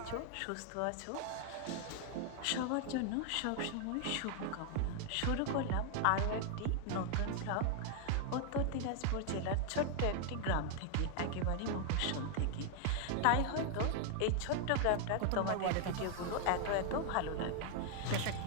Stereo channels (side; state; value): both; different; correlation 0.00